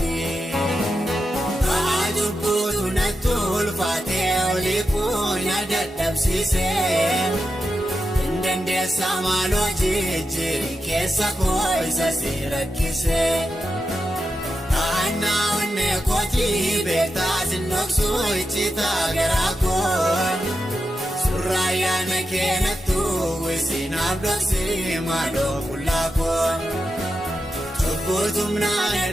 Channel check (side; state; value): both; normal; correlation 0.88